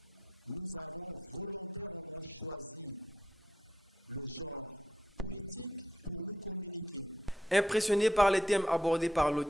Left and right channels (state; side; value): normal; both; correlation 0.79